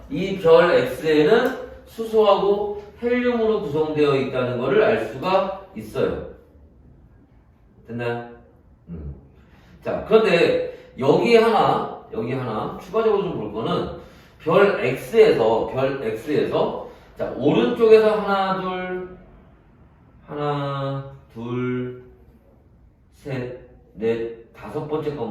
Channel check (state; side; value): identical; both; correlation 1.00